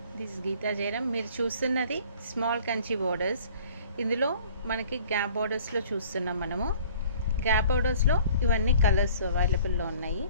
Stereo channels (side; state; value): both; inverted; correlation -0.51